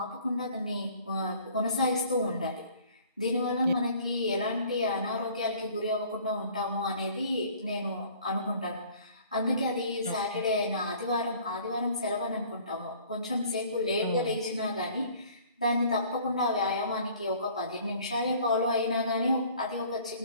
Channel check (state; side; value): inverted; both; correlation -0.53